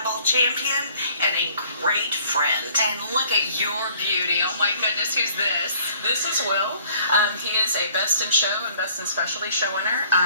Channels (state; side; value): inverted; both; correlation -0.58